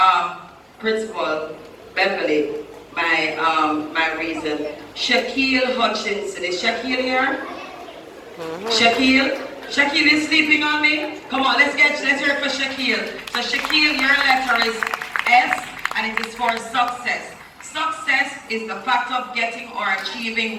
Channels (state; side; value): identical; both; correlation 1.00